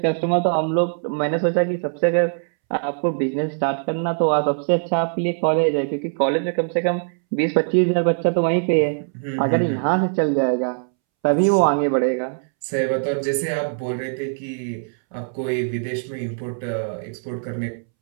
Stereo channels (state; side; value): silent; left; 64 dB below the other